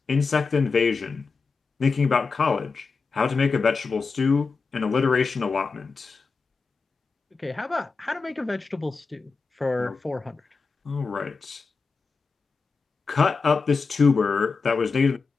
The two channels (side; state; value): right; quieter; 4.6 dB